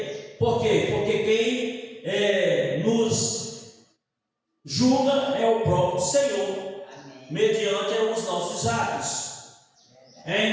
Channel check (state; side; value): identical; both; correlation 1.00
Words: Por quê? Porque quem nos julga é o próprio Senhor, mediante os nossos atos.